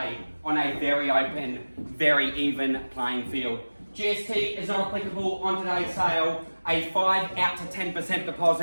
on a very open, very even playing field. GST is not applicable on today's sale. A 5 out to 10%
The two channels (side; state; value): both; inverted; correlation -1.00